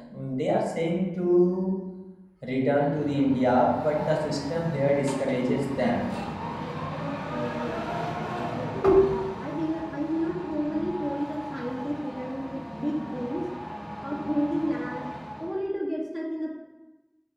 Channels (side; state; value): both; identical; correlation 1.00